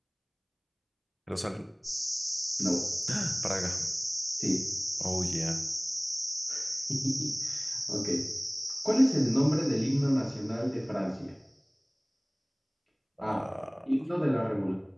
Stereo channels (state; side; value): identical; both; correlation 1.00